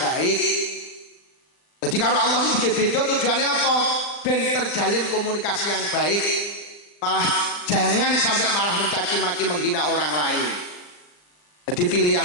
baik. Jadi karo Allah iki beda tujuannya apa? Ben terjalin komunikasi yang baik. Malah jangan sampai malah mencaci maki menghina orang lain. Jadi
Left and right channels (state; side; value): late; right; 39 ms